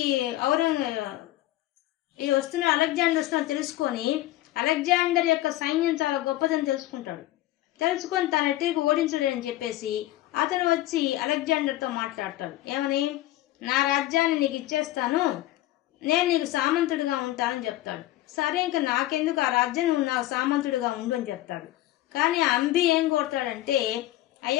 వస్తున్న అలెగ్జాండర్ వస్తున్నా తెలుసుకొని అలెగ్జాండర్ యొక్క సైన్యం చాలా గొప్పదని తెలుసుకుంటాడు. తెలుసుకొని తన ఎట్టికి ఓడించలేని చెప్పేసి అతను వచ్చి అలెగ్జాండర్తో మాట్లాడతాడు. ఏమని? నా రాజ్యాన్ని నీకు ఇచ్చేస్తాను, నేను నీకు సామంతుడిగా ఉంటానని చెప్తాడు. సరే, ఇంకా నాకెందుకు ఆ రాజ్యం, నువ్వు నాకు సామంతుడిగా ఉండు అని చెప్తాడు. కానీ అంబి ఏం కోరుతాడంటే,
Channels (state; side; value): quieter; right; 15.7 dB